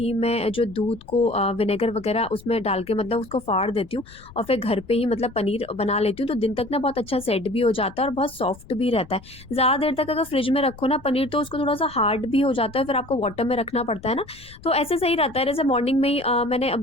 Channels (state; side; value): noise; left; rumble, 21 dB below the sound